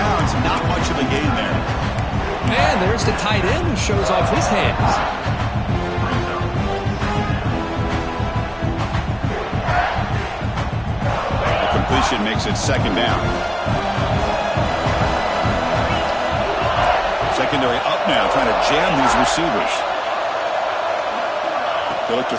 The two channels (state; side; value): identical; both; correlation 1.00